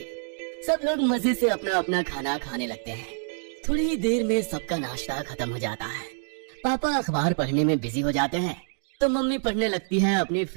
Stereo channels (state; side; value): silent; left; digital silence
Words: सब लोग मजे से अपना अपना खाना खाने लगते हैं। थोड़ी ही देर में सबका नाश्ता खत्म हो जाता है। पापा अखबार पढ़ने में बिजी हो जाते हैं तो मम्मी पढ़ने लगती है अपनी